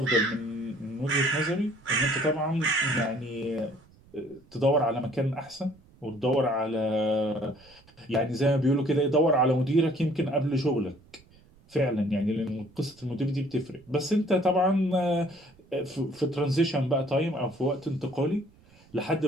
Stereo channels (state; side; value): noise; right; rumble, 27 dB below the sound